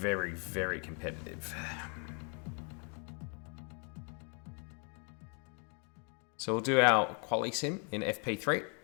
very competitive. So we'll do our quali sim in FP3.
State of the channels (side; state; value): right; quieter; 38.7 dB